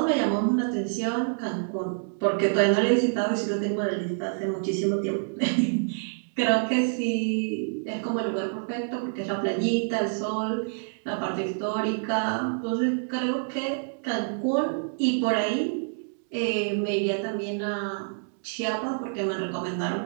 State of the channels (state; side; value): silent; left; digital silence